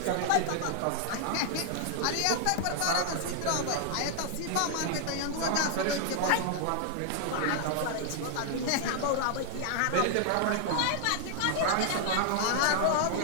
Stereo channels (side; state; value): both; different; correlation -0.01